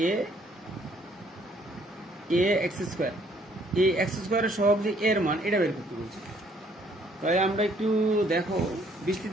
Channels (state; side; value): normal; both; correlation 0.64